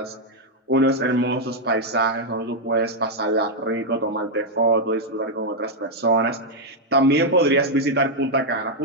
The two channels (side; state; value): both; normal; correlation -0.01